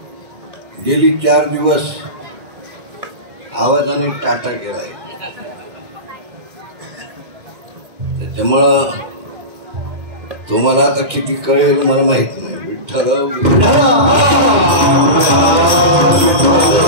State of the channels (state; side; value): late; left; 2.1 ms